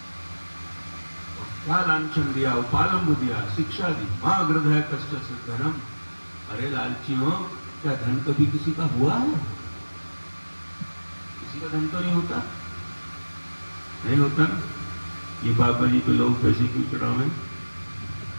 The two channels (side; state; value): both; inverted; correlation -1.00